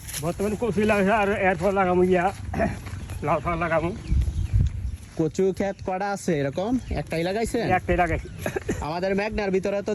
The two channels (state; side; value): identical; both; correlation 1.00